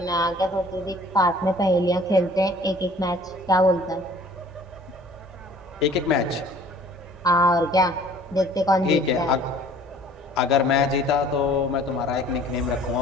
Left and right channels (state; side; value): normal; both; correlation 0.52